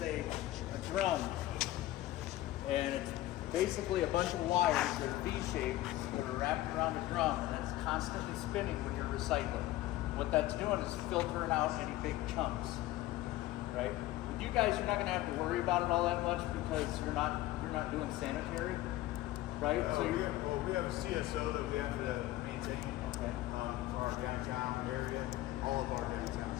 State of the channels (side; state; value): right; quieter; 16.0 dB